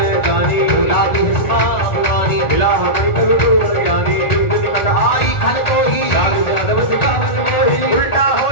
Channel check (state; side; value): late; right; 1.4 ms